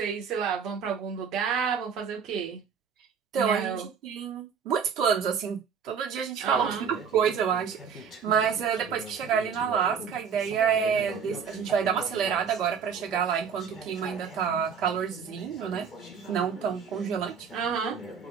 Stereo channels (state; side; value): quieter; left; 6.8 dB